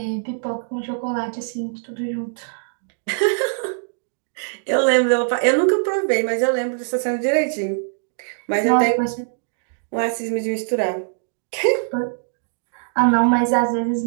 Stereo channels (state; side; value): silent; left; digital silence